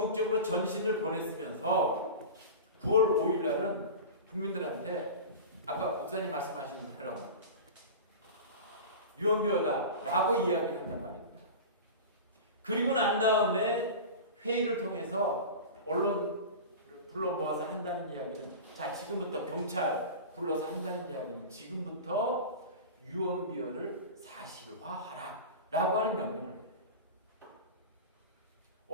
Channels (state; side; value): inverted; both; correlation -0.30